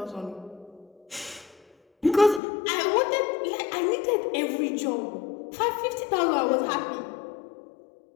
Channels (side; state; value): right; drops out; at 2.4 s